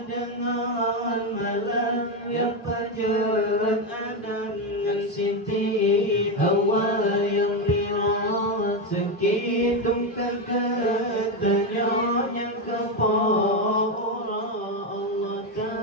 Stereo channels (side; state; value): both; normal; correlation 0.09